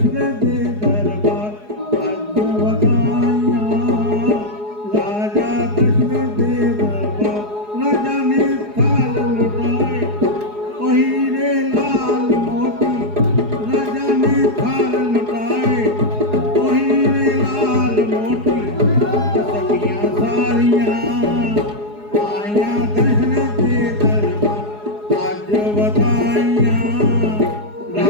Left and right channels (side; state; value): left; late; 4.8 ms